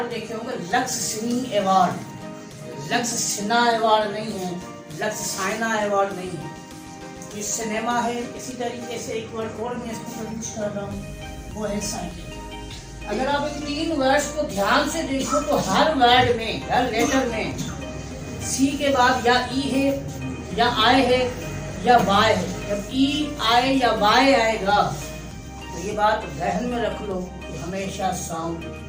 देखे होंगे, लक्स सिनी अवार्ड। लक्स सिन्हा अवार्ड नहीं है, लक्स साइना अवार्ड नहीं है, ये सिनेमा है। इसी तरीके से एक वर्ड और मैं इसको प्रोड्यूस कर रहा हूँ, वो है साइकिल। अगर आप इन 3 वर्ड्स को ध्यान से देखो तो हर वर्ड में, हर लेटर में सी के बाद या ई है या आई है या वाई है। जब ई आई या वाई आएगा तो ये बात ध्यान में रख लो कि हमेशा साउंड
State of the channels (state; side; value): identical; both; correlation 1.00